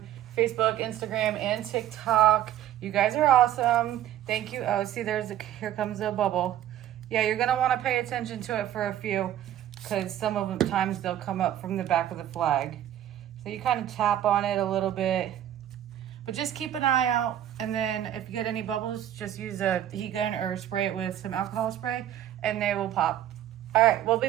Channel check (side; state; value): left; quieter; 11.8 dB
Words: Facebook, Instagram, and TikTok. You guys are awesome. Thank you. Oh, see, here comes a bubble. Yeah, you're gonna want to pay attention to it for a few, because some of the times they'll come up from the back of the flag. So you kind of tap on it a little bit, but just keep an eye out. And then if you get any bubbles, just use a heat gun or spray it with some alcohol spray, and they will pop. All right, we'll be